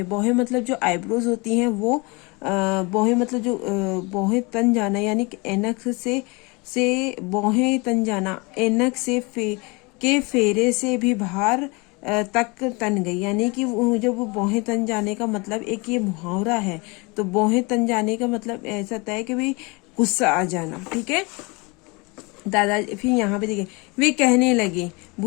भौहें मतलब जो आईब्रोज होती हैं वो भौहें मतलब जो भौहें तन जाना, यानी कि ऐनक से भौहें तन जाना, ऐनक से के फेरे से भी बाहर तक तन गई। यानी कि जब वो भौहें तन जाने का मतलब, एक ये मुहावरा है। तो भौहें तन जाने का मतलब ऐसा होता है कि भाई गुस्सा आ जाना, ठीक है। दादा फिर यहाँ पे देखिए, वे कहने लगे,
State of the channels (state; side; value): quieter; right; 27.7 dB